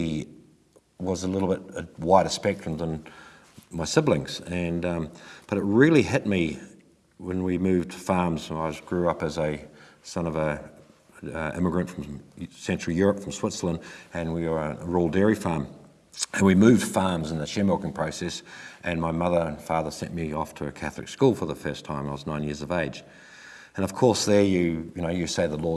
was a little bit a wider spectrum than my siblings. But it really hit me when we moved farms. I grew up as a son of a immigrant from Central Europe, from Switzerland, and we were a rural dairy farm. And we moved farms in the share milking process, and my mother and father sent me off to a Catholic school for the first time. I was 9 years of age. And of course there you say the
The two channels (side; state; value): both; identical; correlation 1.00